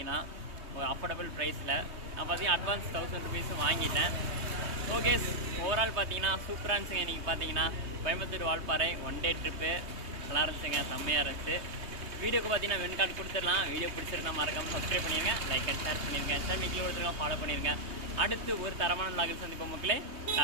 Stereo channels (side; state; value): left; late; 3.2 ms